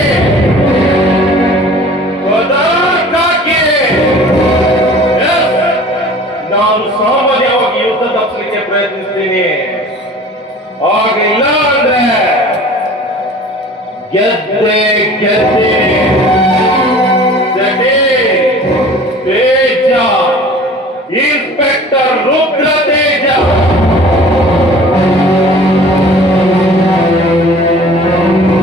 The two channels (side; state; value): both; normal; correlation 0.45